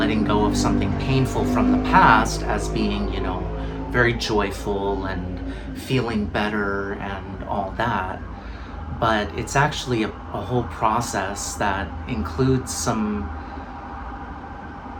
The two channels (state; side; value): identical; both; correlation 1.00